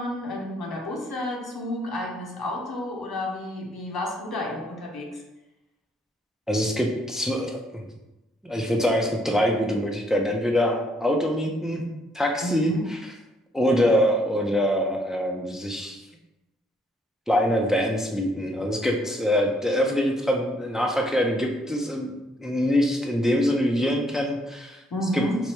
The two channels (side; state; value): both; normal; correlation 0.69